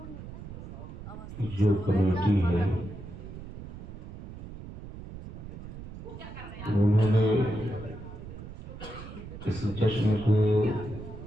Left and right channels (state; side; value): noise; right; rumble, 12 dB below the sound